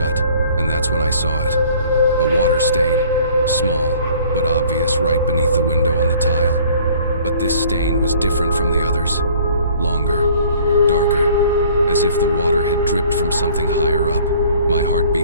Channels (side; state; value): both; inverted; correlation -0.54